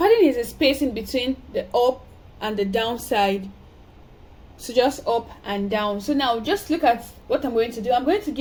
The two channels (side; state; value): both; identical; correlation 1.00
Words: is a spacing between the up and the down side. So just up and down. So now just look at what I'm going to do. I'm going to